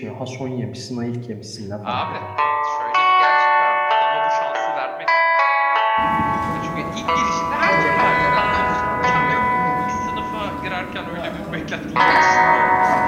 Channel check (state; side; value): identical; both; correlation 1.00